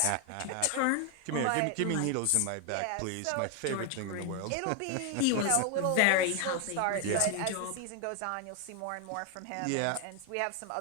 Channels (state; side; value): different; both; correlation 0.01